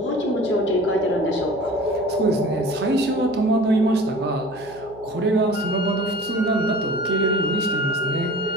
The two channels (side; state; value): right; noise; hum, 22 dB below the sound